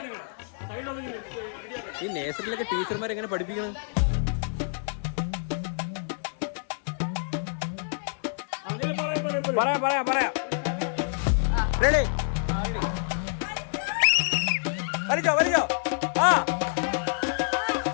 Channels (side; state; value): right; silent; digital silence